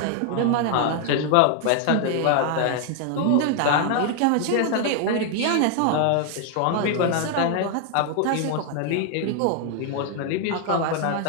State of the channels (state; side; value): different; both; correlation 0.00